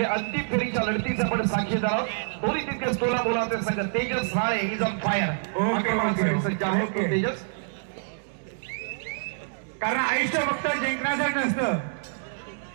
अंतिम फेरीच्या लढतीचा आपण साक्षीदार आहोत. दोन्ही तितकेच तोलामोलाचे संघ. Tejas Rale is on fire. Tejas, कारण आयुष्य फक्त जिंकण्यासाठी नसतं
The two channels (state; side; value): silent; left; digital silence